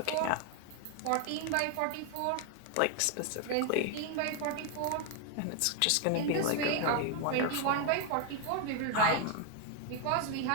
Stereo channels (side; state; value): both; different; correlation 0.00